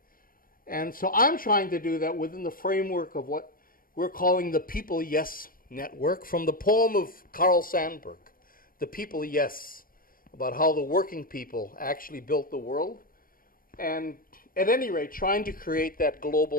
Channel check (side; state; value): right; late; 0.41 ms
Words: And so I'm trying to do that within the framework of what we're calling the People Yes Network, from the poem of Carl Sandburg, The People Yes, about how the working people actually built the world. And at any rate, trying to create that